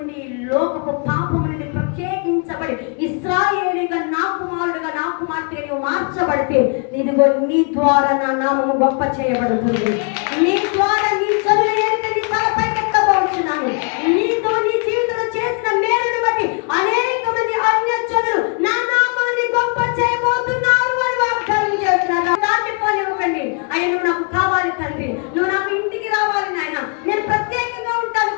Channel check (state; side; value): quieter; right; 39.1 dB